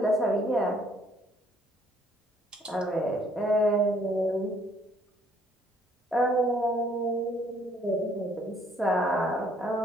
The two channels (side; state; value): both; normal; correlation 0.64